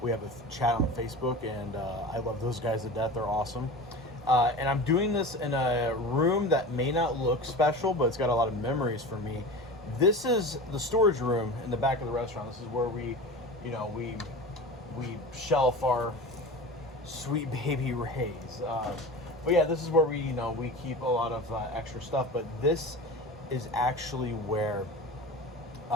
We have a chat on Facebook, and I love those guys to death. They're awesome. And I'm doing this in a room that may not look special, but it's got a lot of memories for me. This is the storage room in the back of the restaurant. This is where we shelf our sweet baby Rays. But yeah, this is where we keep a lot of extra stuff. But this is actually where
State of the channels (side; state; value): both; normal; correlation 0.32